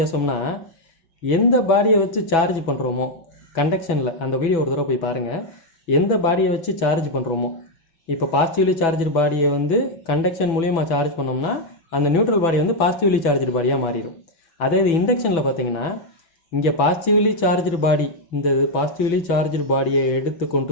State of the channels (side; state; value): right; late; 6.1 ms